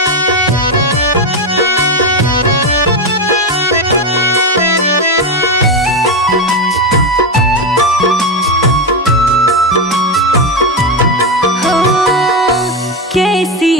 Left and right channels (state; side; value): normal; both; correlation 0.12